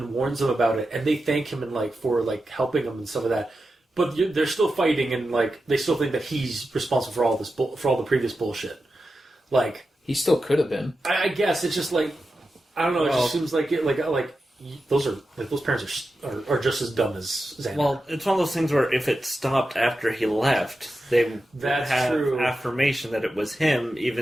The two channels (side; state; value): both; normal; correlation 0.91